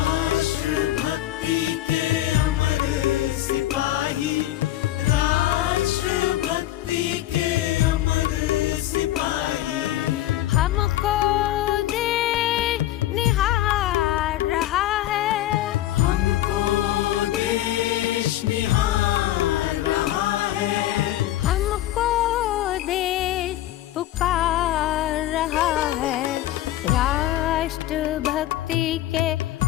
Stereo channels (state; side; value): quieter; right; 14.1 dB